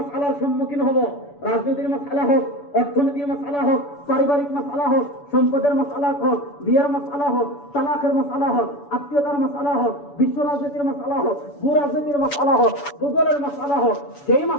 সম্মুখীন হব, রাজনীতির মাসআলা হোক, অর্থনীতির মাসআলা হোক, পারিবারিক মাসআলা হোক, সম্পদের মাসআলা হোক, বিয়ের মাসআলা হোক, তালাকের মাসআলা হোক, আত্মীয়তার মাসআলা হোক, বিশ্ব রাজনীতির মাসআলা হোক, ভূ রাজনীতির মাসআলা হোক, ভূগোলের মাসআলা হোক, যেই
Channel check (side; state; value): right; late; 7.0 ms